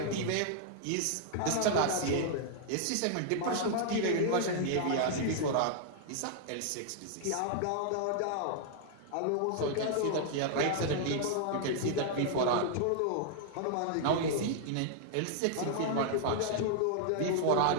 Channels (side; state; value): both; different; correlation -0.01